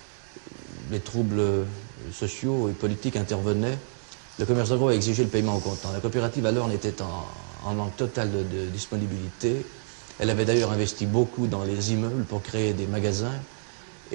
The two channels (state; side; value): silent; left; digital silence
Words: les troubles sociaux et politiques intervenaient, le commerce de gros a exigé le paiement au comptant. La coopérative alors n'était en manque total de disponibilité. Elle avait d'ailleurs investi beaucoup dans les immeubles pour créer des magasins